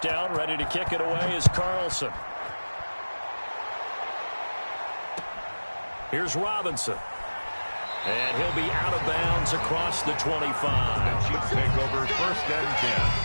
ready to kick it away is Carlson. Here's Robinson. And he'll be out of bounds across the 25. The Chiefs take over 1st and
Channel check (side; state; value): both; inverted; correlation -1.00